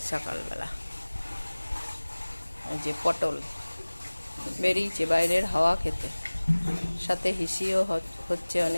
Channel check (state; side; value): inverted; both; correlation -1.00